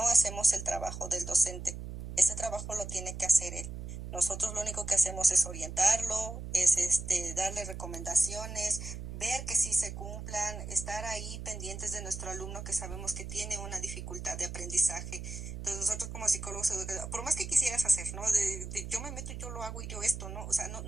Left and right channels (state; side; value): noise; right; hum, 8 dB below the sound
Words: hacemos el trabajo del docente. Ese trabajo lo tiene que hacer él. Nosotros lo único que hacemos es orientarlo, es darle recomendaciones, ver que sí se cumplan, estar ahí pendientes de nuestro alumno que sabemos que tiene una dificultad de aprendizaje. Entonces nosotros como psicólogos, por más que quisieras hacer, ¿no? Yo me meto y yo lo hago y yo esto, ¿no? O sea,